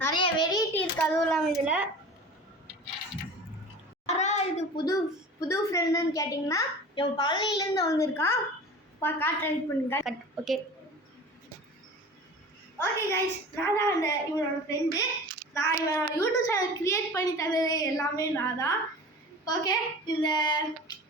நிறைய வெரைட்டி இருக்குது. அதுவும் இல்லாமல் இதில் யாராவது இது புது ஃப்ரெண்டுன்னு கேட்டிங்கன்னா இவன் பழனியிலேருந்து வந்திருக்கான். காட்டுறேன் பண்ணுங்க. ஓகே கைஸ், நான் தான் இவனோட ஃப்ரெண்டு. நான் இவனோட யூடியூப் சேனல் க்ரியேட் பண்ணி தந்தது எல்லாமே நான் தான். ஓகே,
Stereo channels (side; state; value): both; normal; correlation 0.38